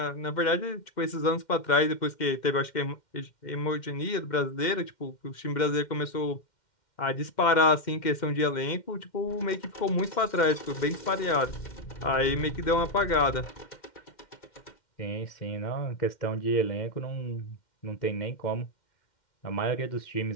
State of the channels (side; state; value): right; late; 2.1 ms